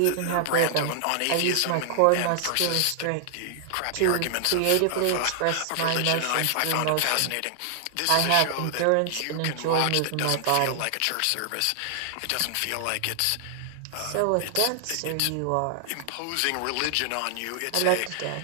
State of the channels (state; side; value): different; both; correlation -0.01